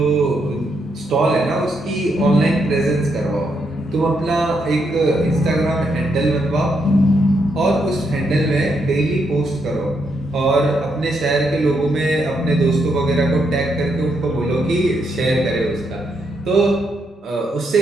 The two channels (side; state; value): both; normal; correlation 0.78